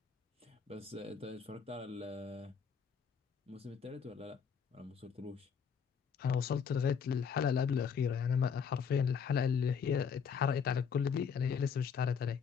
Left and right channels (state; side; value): quieter; right; 6.6 dB